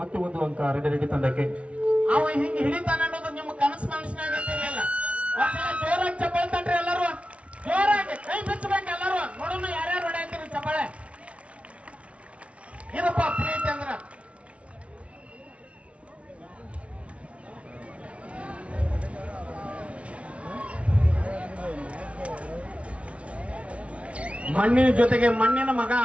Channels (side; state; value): left; late; 0.062 ms